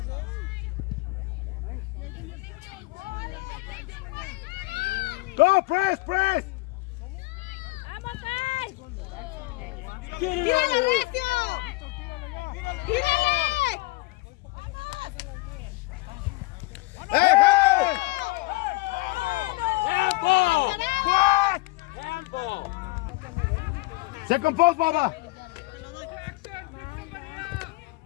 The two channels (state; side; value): quieter; right; 22.5 dB